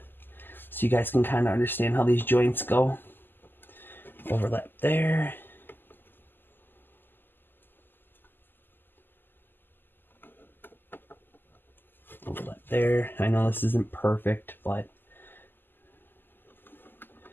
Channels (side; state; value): right; late; 0.094 ms